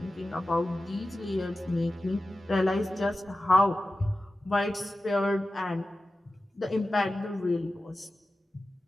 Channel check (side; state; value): both; normal; correlation 0.94